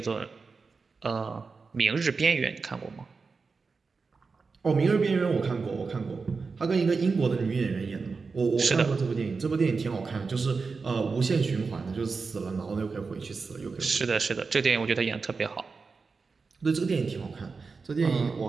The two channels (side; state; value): left; quieter; 4.6 dB